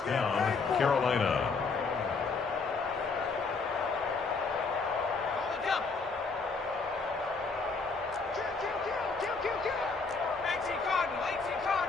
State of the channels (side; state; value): right; quieter; 4.4 dB